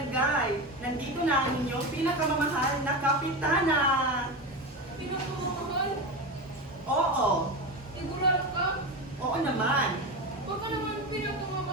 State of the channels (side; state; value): both; normal; correlation 0.21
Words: Nandito na ang inyong pinakamamahal na kapitana. Pinakamamahal? Oo, Sigurado ka? oo naman. Baka naman